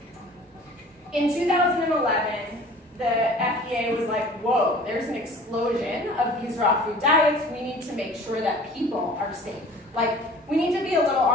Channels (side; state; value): both; normal; correlation 0.46